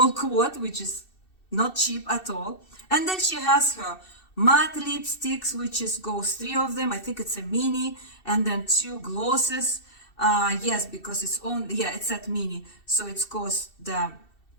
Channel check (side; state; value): right; late; 2.7 ms